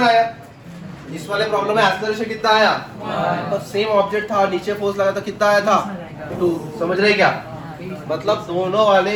आया. इस वाले प्रॉब्लम में एक्सेलरेशन कितना आया? तो सेम ऑब्जेक्ट था, नीचे फोर्स लगा, तो कितना आया था? 2. समझ रहे क्या? मतलब दोनों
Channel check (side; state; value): both; identical; correlation 1.00